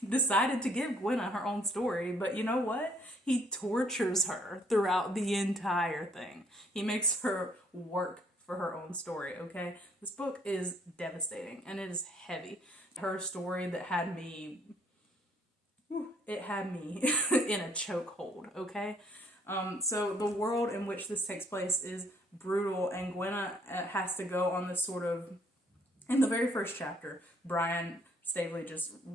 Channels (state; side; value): normal; both; correlation 0.65